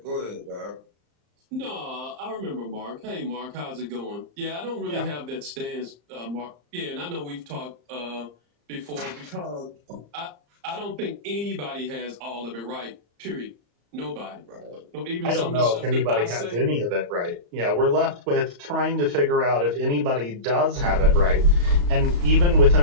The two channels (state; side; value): late; left; 34 ms